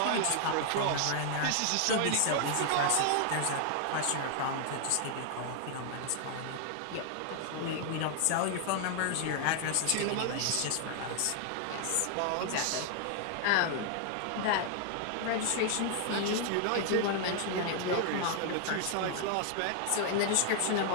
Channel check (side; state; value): both; different; correlation 0.00